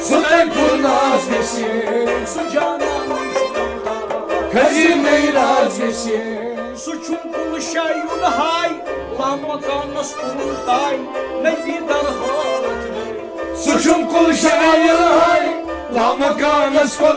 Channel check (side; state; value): both; identical; correlation 1.00